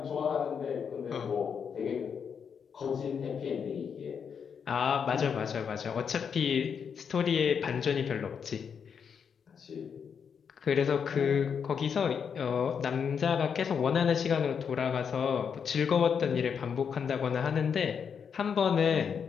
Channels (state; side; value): quieter; right; 6.9 dB